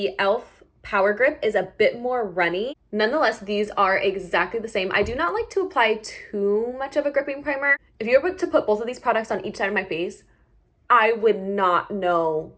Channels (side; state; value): both; identical; correlation 1.00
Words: e.l.f. Power Grip is a bit more runny. Nonetheless, these are exactly the same. I do not like to apply too much of a gripping primer. If you were to put both of these products on each side of my face, I would not know